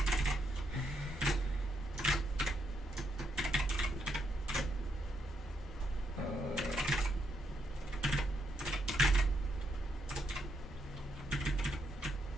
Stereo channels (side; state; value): both; normal; correlation 0.78